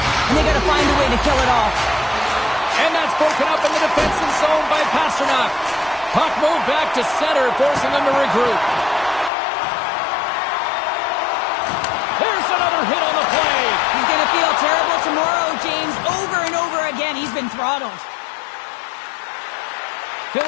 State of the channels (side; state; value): right; drops out; at 9.3 s